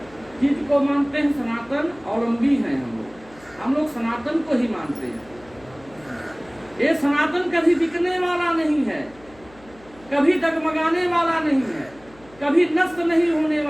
चीज को मानते हैं? सनातन अवलंबी हैं हम लोग सनातन को ही मानते हैं। ये सनातन कभी बिकने वाला नहीं है, कभी डगमगाने वाला नहीं है, कभी नष्ट नहीं होने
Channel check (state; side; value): noise; left; hum, 25 dB below the sound